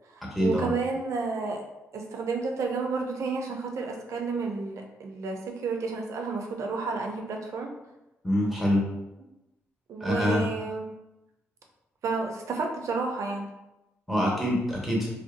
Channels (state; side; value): normal; both; correlation 0.75